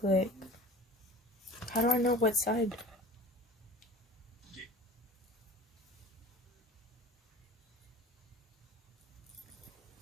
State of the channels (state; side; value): normal; both; correlation 0.41